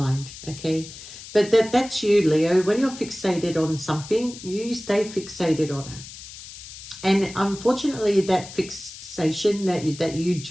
okay? But that's you, Leo. When you're fixated on something, you stay fixated on it. And unfortunately, that fixation that you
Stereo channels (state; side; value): noise; left; hiss, 14 dB below the sound